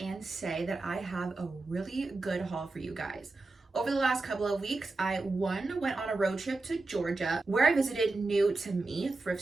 say that I have a really good haul for you guys. Over the last couple of weeks, I went on a road trip to Georgia where I visited new to me thrift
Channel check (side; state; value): left; quieter; 3.3 dB